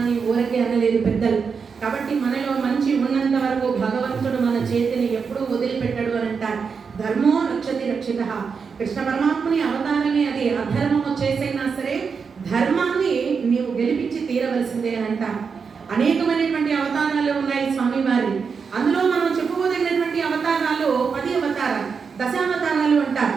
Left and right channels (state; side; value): quieter; left; 5.7 dB